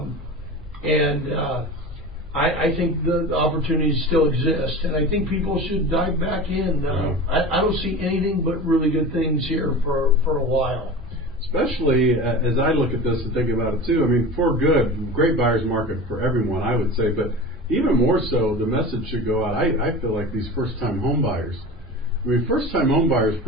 and I think the opportunities still exist, and I think people should dive back in. I don't see anything but really good things here for a while. Especially as I look at this and think about it too. I mean, for good, great buyer's market for everyone, I would say, but even more so, the message should go out. I feel like these first-time home buyers. I mean, first-time home buyers,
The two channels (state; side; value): normal; both; correlation 0.32